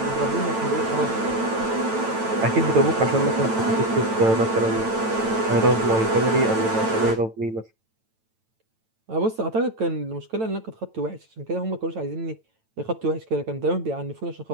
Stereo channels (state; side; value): late; left; 9.0 ms